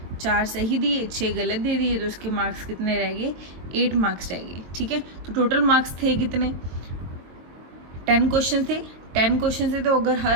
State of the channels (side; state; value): left; late; 22 ms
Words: 4 सही दिए, 6 गलत दे दिए, तो उसके मार्क्स कितने रह गए, 8 मार्क्स रह गए। ठीक है, तो टोटल मार्क्स थे कितने, 10 क्वेश्चन थे। 10 क्वेश्चन थे, तो अगर